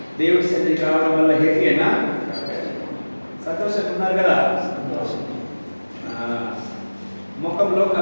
దేవుడి సన్నిధికి రావడం వల్ల హ్యాపీ అయినా? సంతోషంగా ఉన్నారు కదా? ముఖంలో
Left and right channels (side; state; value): both; inverted; correlation -1.00